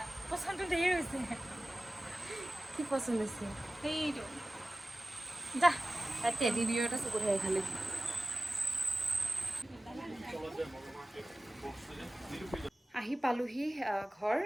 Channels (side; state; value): both; normal; correlation 0.97